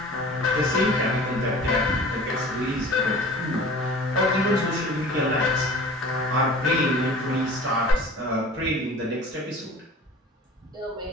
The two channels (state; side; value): normal; both; correlation 0.42